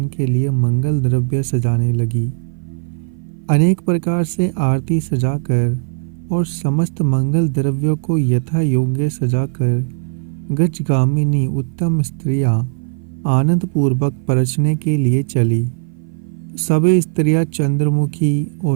के लिए मंगल द्रव्य सजाने लगी। अनेक प्रकार से आरती सजाकर और समस्त मंगल द्रव्यों को यथा योग्य सजाकर गजगामिनी उत्तम स्त्रियां आनंद पूर्वक परछने के लिए चली। सभी स्त्रियां चंद्रमुखी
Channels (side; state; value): left; silent; 57 dB below the other